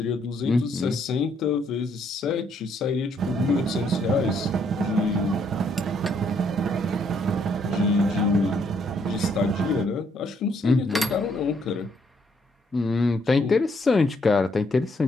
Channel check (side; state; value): both; normal; correlation 0.70